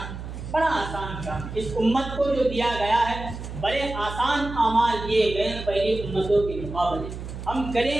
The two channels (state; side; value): noise; right; hum, 9 dB below the sound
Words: بڑا آسان کام، اس امت کو جو دیا گیا ہے بڑے آسان اعمال دیے گئے ہیں پہلی امتوں کے مقابلے۔ ہم